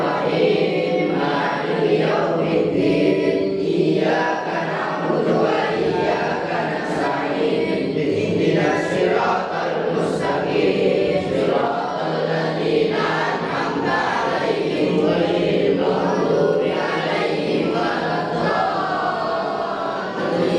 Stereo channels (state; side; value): identical; both; correlation 1.00